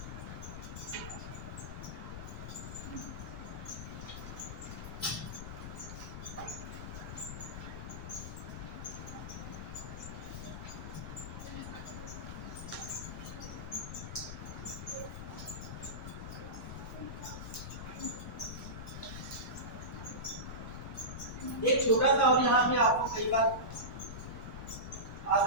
छोटा सा और यहाँ पे आपको कई बार आ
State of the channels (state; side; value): noise; left; rumble, 7 dB below the sound